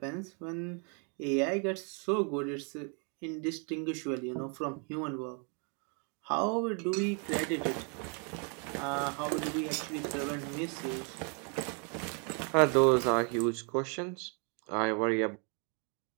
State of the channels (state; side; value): quieter; left; 38.1 dB